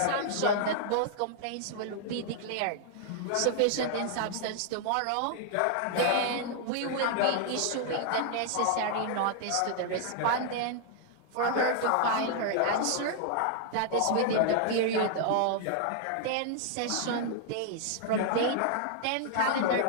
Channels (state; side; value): different; both; correlation 0.00